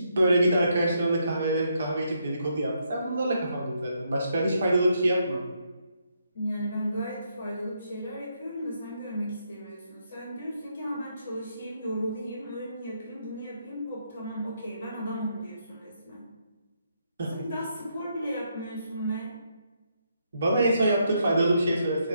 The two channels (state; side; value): inverted; both; correlation -0.77